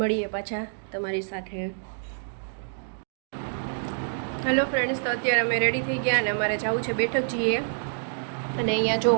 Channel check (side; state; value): left; silent; digital silence